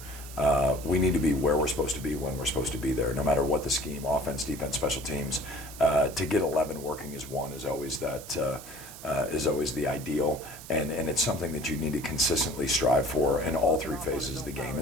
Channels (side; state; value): right; noise; hiss, 15 dB below the sound